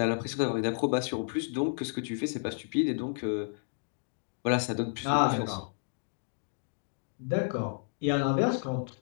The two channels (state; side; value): silent; right; digital silence